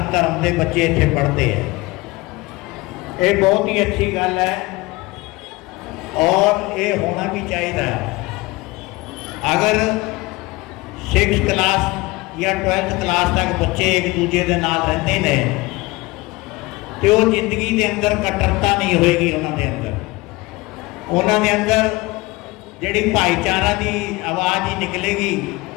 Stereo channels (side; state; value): right; quieter; 22.0 dB